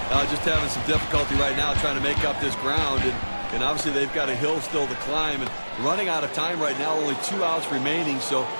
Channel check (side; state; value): both; inverted; correlation -1.00